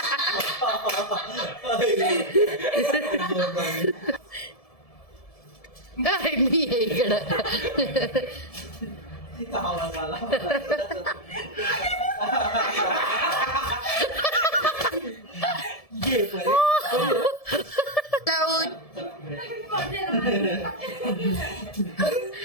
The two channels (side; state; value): right; late; 1.7 ms